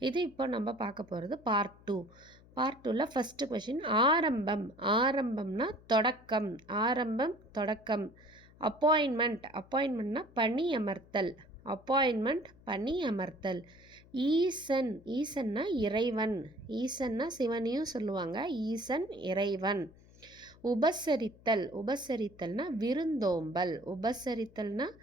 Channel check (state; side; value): noise; left; hum, 24 dB below the sound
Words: இது இப்போ நம்ம பார்க்க போகிறது பார்ட் 2. பார்ட் 2ல் ஃபஸ்ட்டு கொஷின் ஆரம்பம். ஆரம்பம்னா தொடக்கம். ஆரம்பம் தொடக்கம். அப்பாயின்மெண்ட்னா பணி அமர்த்தல். அப்பாயின்மெண்ட் பணி அமர்த்தல். ஈசன். ஈசன்னா இறைவன். ஈசன்னா சிவனையும் சொல்லுவாங்க. ஈசன் இறைவன். உபசரித்தல். உபசரித்தல்னா விருந்தோம்பல். உபசரித்தல்னா